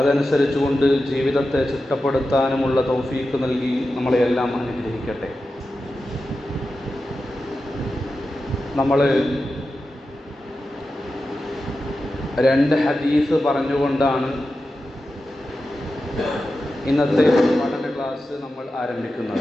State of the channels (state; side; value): normal; both; correlation 0.92